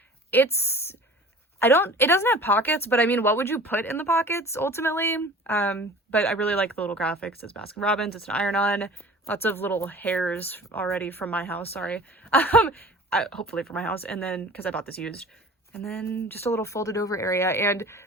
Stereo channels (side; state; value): both; normal; correlation 0.43